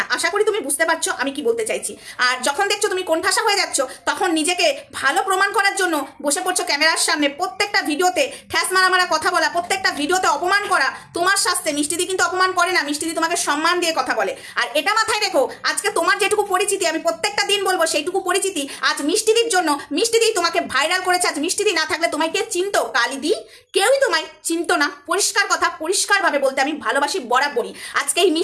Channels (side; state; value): both; identical; correlation 1.00